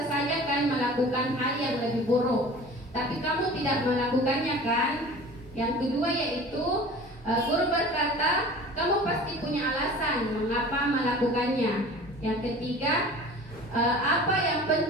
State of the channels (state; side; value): normal; both; correlation 0.41